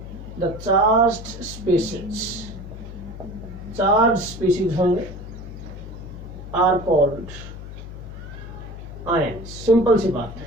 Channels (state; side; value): noise; left; hum, 11 dB below the sound